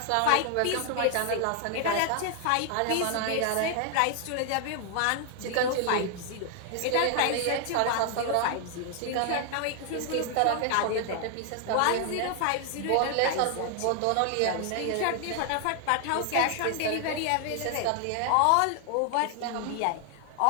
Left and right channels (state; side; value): different; both; correlation 0.00